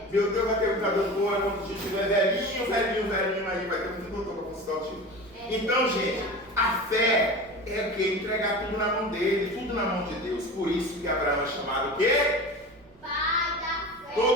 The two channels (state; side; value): noise; right; rumble, 29 dB below the sound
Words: Meu Deus, vai ter muita doutora quando a gente tiver velhinho aí, vai ter muito doutor para consultar o tio. Então, gente, a fé é o que? Entregar tudo na mão dele, tudo na mão de Deus. Por isso que Abraão é chamado o quê? Pai da fé.